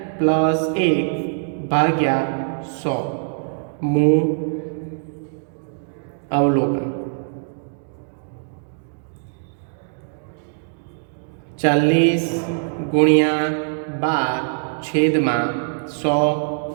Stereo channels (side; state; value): left; silent; digital silence